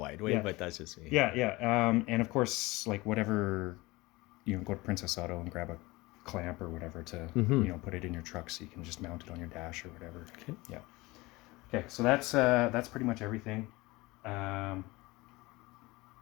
way, Yeah. but that's just me. Yeah. And of course, like whatever, you know, go to Princess Auto and grab a clamp or whatever to, you know, put it in your truck so you can just mount it on your dash or whatever. Yeah. Okay, so that's pretty much everything.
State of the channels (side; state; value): right; quieter; 21.8 dB